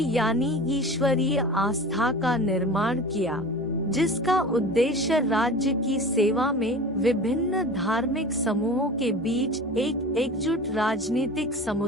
यानी ईश्वरीय आस्था का निर्माण किया, जिसका उद्देश्य राज्य की सेवा में विभिन्न धार्मिक समूहों के बीच एक एकजुट राजनीतिक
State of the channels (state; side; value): normal; both; correlation 0.35